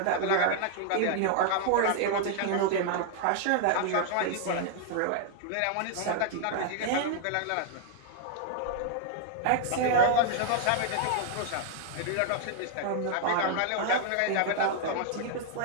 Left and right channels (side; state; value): both; different; correlation 0.00